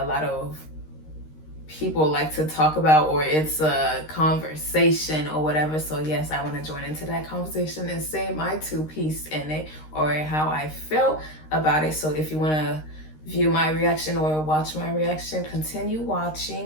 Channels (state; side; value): late; right; 13 ms